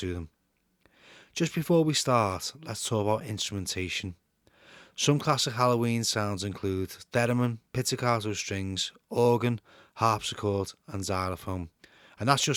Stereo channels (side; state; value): both; identical; correlation 1.00